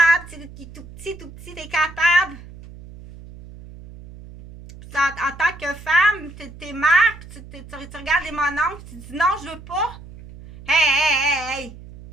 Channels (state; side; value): noise; right; hum, 17 dB below the sound